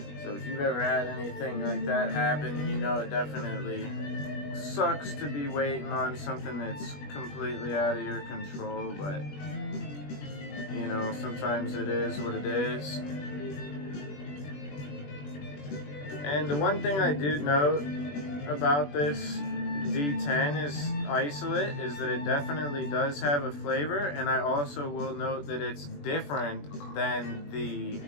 So if you've ever had anything like that happen, you know it definitely sucks to be waiting on something that's completely out of your control, but you know, sometimes it is what it is. And the one thing I do note about this D10 is isolate is that it definitely does have a flavor, and I also will note that it's different than the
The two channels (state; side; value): late; right; 21 ms